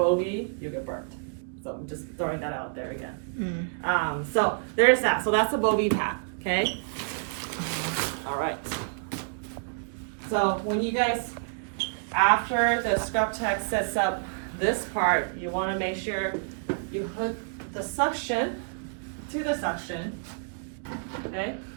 you'll get burnt. So I'm just throwing that out there again. So there's that. So that's a bogey pack, okay? All right. So when you guys, after the scrub tech sets up this part, you want to make sure you hook the suction to the suction, okay?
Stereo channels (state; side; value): silent; left; digital silence